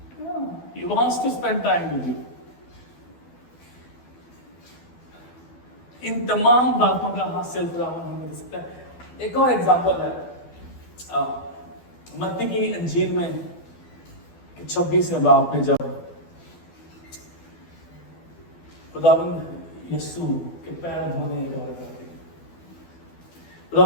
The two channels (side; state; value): right; late; 12 ms